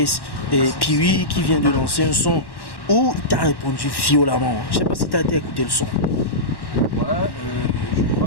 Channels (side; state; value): right; late; 1.1 ms